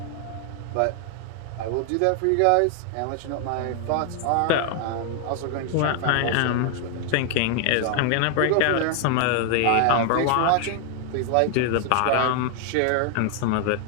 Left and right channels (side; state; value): both; different; correlation 0.00